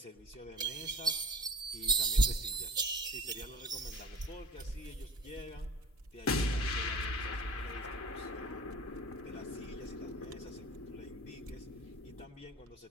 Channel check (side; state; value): both; normal; correlation 0.40